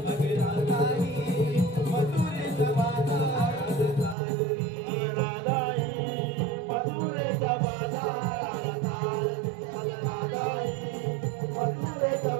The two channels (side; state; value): left; drops out; at 4.2 s